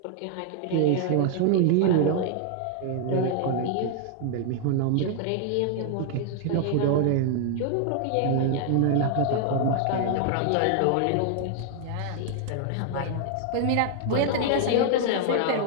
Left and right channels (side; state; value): both; different; correlation 0.00